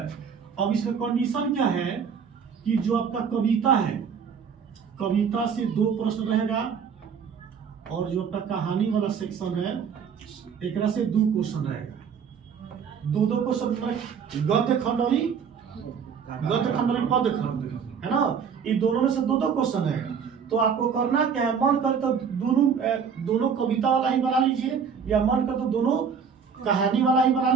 अब इसमें कंडीशन क्या है कि जो आपका कविता है, कविता से 2 प्रश्न रहेगा और जो आपका कहानी वाला सेक्शन है एक से 2 क्वेश्चन रहेगा। 2 क्वेश्चन गद्य खंड और पद्य खंड है ना, ये दोनों में से 2 क्वेश्चन रहेगा। तो आपको करना क्या है, मन कर तो दोनों कविता वाला ही बना लीजिए या मन कर तो दोनों कहानी वाला ही बना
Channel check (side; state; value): left; quieter; 6.7 dB